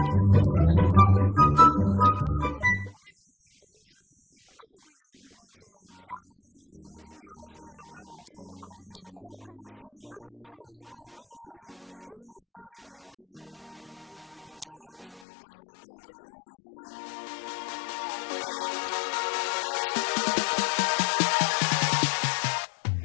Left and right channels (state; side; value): drops out; right; at 15.2 s